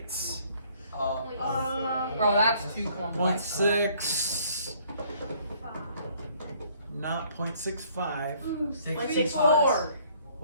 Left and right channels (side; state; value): both; inverted; correlation -0.61